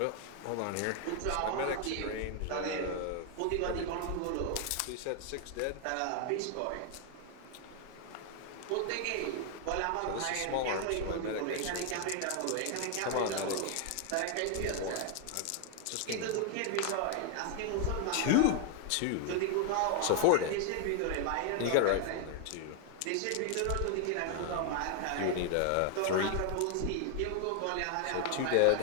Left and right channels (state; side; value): different; both; correlation 0.00